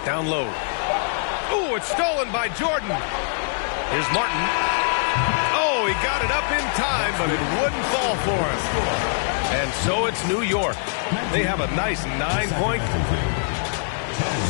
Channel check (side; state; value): right; silent; digital silence